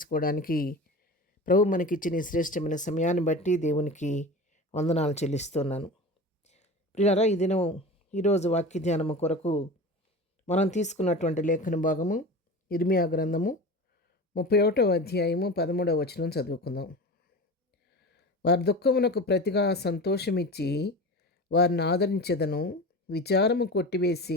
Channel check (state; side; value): normal; both; correlation 0.32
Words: ప్రభు మనకిచ్చిన ఈ శ్రేష్టమైన సమయాన్ని బట్టి దేవునికి వందనాలు చెల్లిస్తున్నాను. ప్రియారా, ఈ దినం ఈరోజు వాక్య ధ్యానము కొరకు మనం తీసుకున్నటువంటి లేఖన భాగము ఇర్మియా గ్రంథము 31వ అధ్యాయము 13వ వచనం చదువుకుందాం. వారి దుఃఖమునకు ప్రతిగా సంతోషమిచ్చి వారిని ఆదరించెదను, విచారము